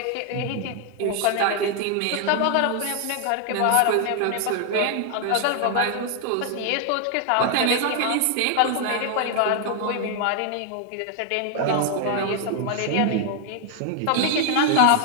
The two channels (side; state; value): both; different; correlation 0.00